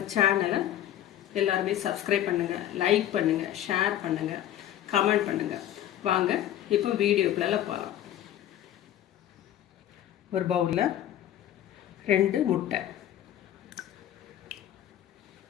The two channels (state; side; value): quieter; right; 11.9 dB